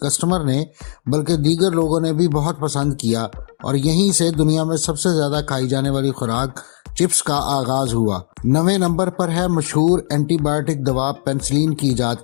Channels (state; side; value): silent; right; digital silence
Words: نے بلکہ دیگر لوگوں نے بھی بہت پسند کیا، اور یہیں سے دنیا میں سب سے زیادہ کھائی جانے والی خوراک چپس کا آغاز ہوا۔ 9ویں نمبر پر ہے مشہور اینٹی بائیوٹک دوا پینسلین کی